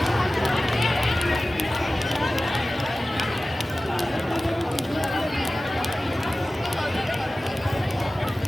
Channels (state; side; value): normal; both; correlation 0.96